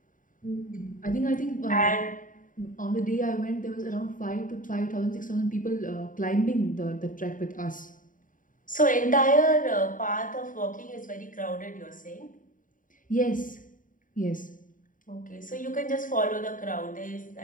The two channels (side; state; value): right; late; 0.39 ms